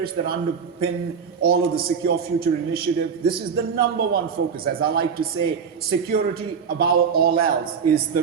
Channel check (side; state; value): left; quieter; 6.4 dB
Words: that underpin all of the Secure Future Initiative. This is the number one focus. As I like to say, security above all else is the